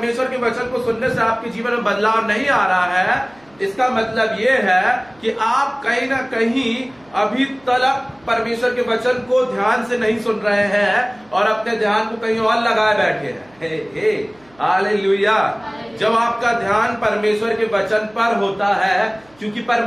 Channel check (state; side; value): noise; right; hum, 30 dB below the sound